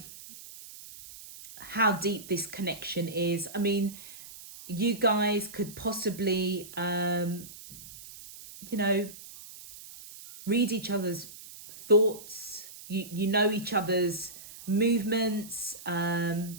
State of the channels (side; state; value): right; noise; hiss, 16 dB below the sound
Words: how deep this connection is. I mean, you guys could possibly, read each other's thoughts. You know each other's movements,